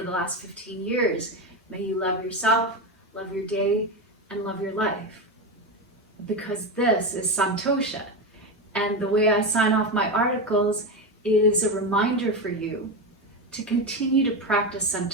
last 15 years. May you love yourself, love your day, and love your life. Because this is Santosha. And the way I sign off my articles is a reminder for you to continue to practice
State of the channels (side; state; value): both; normal; correlation 0.16